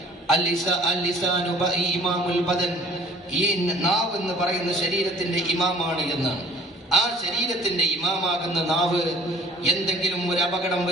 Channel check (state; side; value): normal; both; correlation 0.51